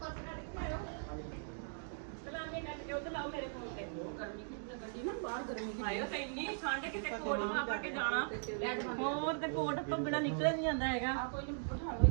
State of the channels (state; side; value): silent; left; digital silence